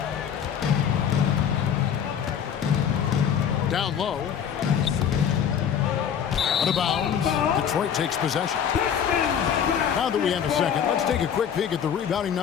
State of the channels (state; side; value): quieter; right; 8.3 dB